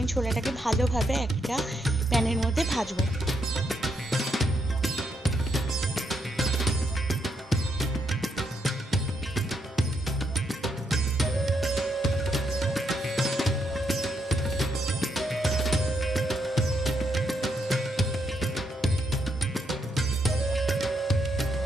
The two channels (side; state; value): both; normal; correlation 0.78